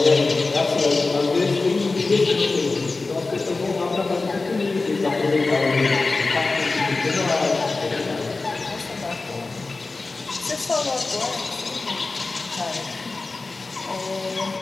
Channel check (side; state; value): right; quieter; 3.6 dB